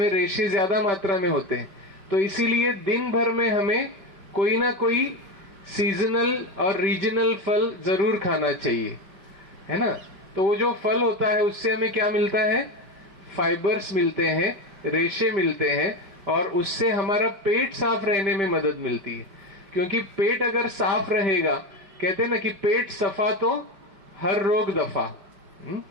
रेशे ज्यादा मात्रा में होते हैं। तो इसीलिए दिन भर में हमें कोई ना कोई सीजनल और रीजनल फल जरूर खाना चाहिए, है ना। तो वो जो फल होता है उससे हमें क्या मिलता है, फाइबर्स मिलते हैं, रेशे मिलते हैं, और उससे हमारा पेट साफ रहने में मदद मिलती है। क्योंकि पेट अगर साफ रहेगा, कहते हैं ना कि पेट सफा तो हर रोग दफा।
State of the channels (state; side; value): late; left; 5.1 ms